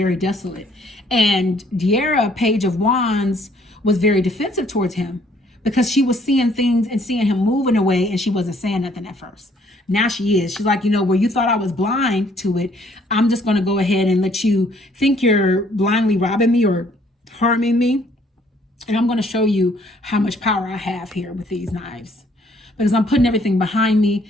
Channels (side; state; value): both; normal; correlation 0.63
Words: desolate. And De'Ara, Page of Wands, was very defensive towards him because she was seeing things and seeing him moving away, and she wasn't saying nothing at first. Now she is. She's like, you know, where you thought I was blind to it, I'm just going to go ahead and let you think you're blindly robbing me or harming me, and I'm going to show you how much power I have here with these knives, because I'm putting everything behind me,